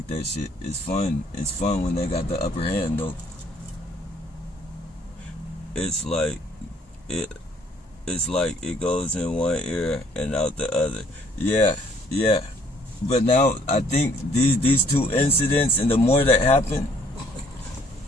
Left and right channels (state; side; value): normal; both; correlation 0.62